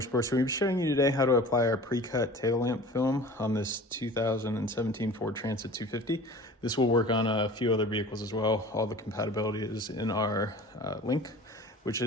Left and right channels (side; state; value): both; normal; correlation 0.42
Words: So we'll be showing you today how to apply our pre-cut tail lamp film on this 2017 Ford Transit 250. This will work on a few other vehicles as well. All the compatibility is in our link, which